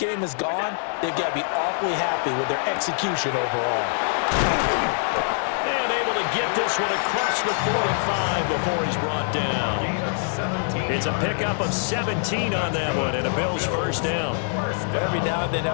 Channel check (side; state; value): right; silent; digital silence